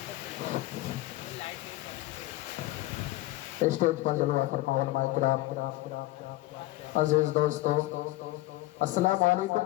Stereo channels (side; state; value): right; quieter; 18.1 dB